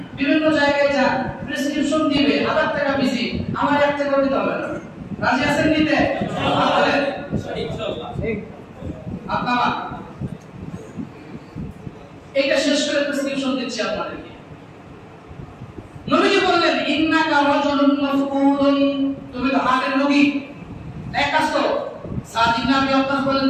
বিভিন্ন জায়গায় যান, প্রেসক্রিপশন দিবে, 1000 টাকা বেশি, আমার 1 টাকা দিতে হবে না। রাজি আছেন নিতে? ইনশাআল্লাহ। আপনারা এটা শেষ করে প্রেসক্রিপশন দিচ্ছি আপনাদেরকে। নবীজি বললেন ইন্নাকা রাজুলুন মাফকুদুন, তুমি তো হার্টের রোগী, এক কাজ করো। সাদ ইবনে আবি ওয়াক্কাস বললেন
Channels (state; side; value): identical; both; correlation 1.00